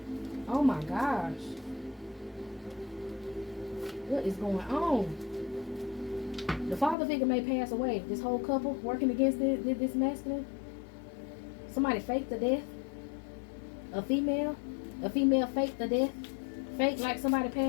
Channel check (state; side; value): drops out; right; at 7.0 s